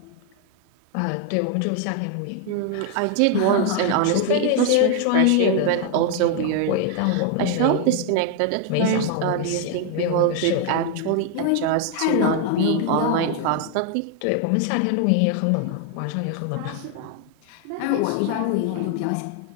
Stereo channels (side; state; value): both; different; correlation 0.01